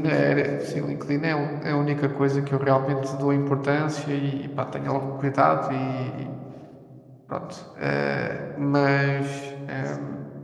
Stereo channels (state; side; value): identical; both; correlation 1.00